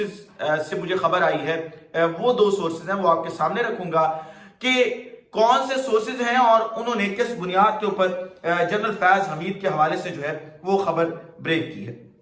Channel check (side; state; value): both; identical; correlation 1.00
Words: से मुझे खबर आई है, वो 2 सोर्सेज हैं, वो आपके सामने रखूंगा कि कौन से सोर्सेज हैं और उन्होंने किस बुनियाद के ऊपर जनरल फैज हमीद के हवाले से जो है वो खबर ब्रेक की है।